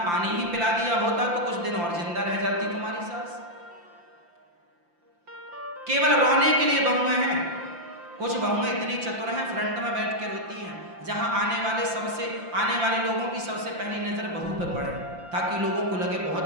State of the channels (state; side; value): late; left; 5.8 ms